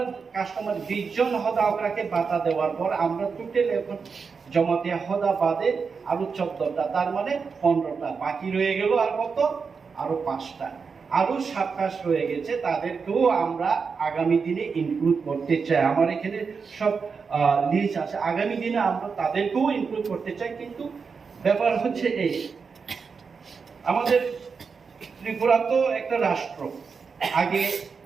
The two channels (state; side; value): quieter; left; 5.4 dB